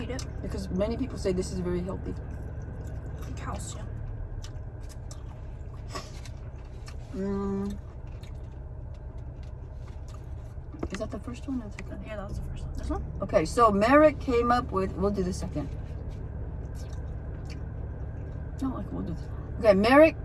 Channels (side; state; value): both; identical; correlation 1.00